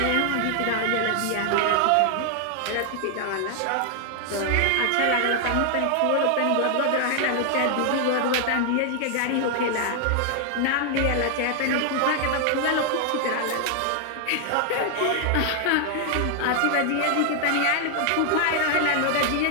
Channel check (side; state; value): both; different; correlation 0.00